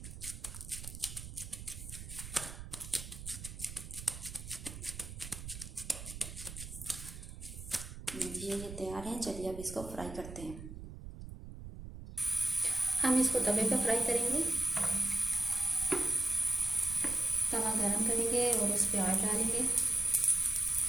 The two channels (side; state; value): right; noise; rumble, 11 dB below the sound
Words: ये तैयार है। चलिए अब इसको फ्राई करते हैं। हम इसको तवे पर फ्राई करेंगे। तवा गरम करेंगे और उस पर ऑयल डालेंगे।